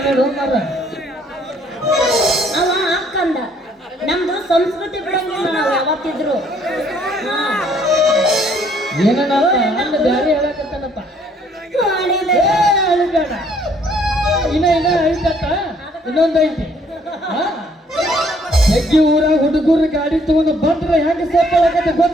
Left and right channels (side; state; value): both; normal; correlation 0.63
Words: ಮಾರ ಅವ ಅಕ್ಕಂದ ನಮ್ದು ಸಂಸ್ಕೃತಿ ಬಿಡಂಗಿಲ್ಲ ನಾವು ಯಾವತ್ತಿದ್ರು ಏನ ಅಣ್ಣ ಬ್ಯಾರೆ ಹೇಳಕತ್ತಾನಪ್ಪ ಮಾಡಿದೆ ಅಳಿಬೇಡ ಇನ್ನ ಐತತ್ತ ಇನ್ನೊಂದು ಐತಿ ಹೆಗ್ಗಿ ಊರಾಗ ಹುಡುಗರು ಗಾಡಿ ತಗೊಂಡು ಬಂದ್ರೆ ಹೆಂಗ ಸೇರ್ಕೊಳ್ಳಕತ್ತ